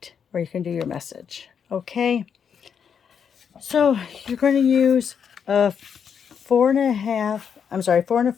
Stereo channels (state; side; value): quieter; right; 7.3 dB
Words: where you can do your message. Okay, so you're going to use a 4